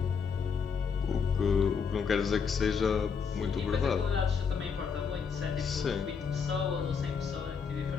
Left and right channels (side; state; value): right; quieter; 6.1 dB